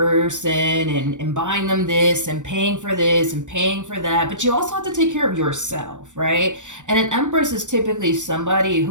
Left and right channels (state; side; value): late; left; 0.85 ms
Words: and buying them this and paying for this and paying for that, but you also have to take care of yourself, right? And an Empress is typically somebody